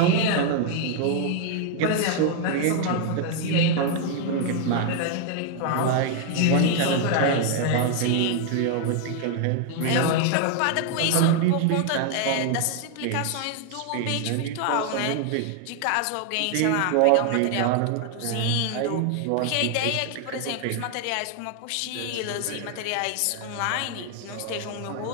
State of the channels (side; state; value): both; different; correlation 0.00